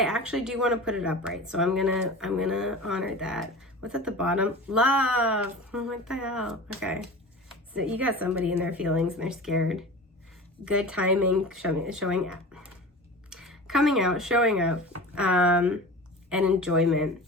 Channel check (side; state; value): both; normal; correlation 0.35